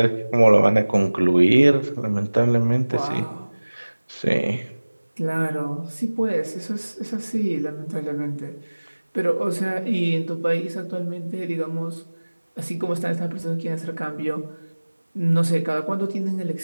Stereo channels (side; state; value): both; inverted; correlation -1.00